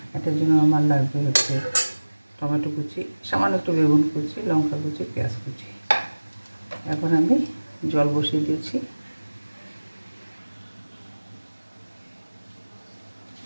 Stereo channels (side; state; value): both; inverted; correlation -1.00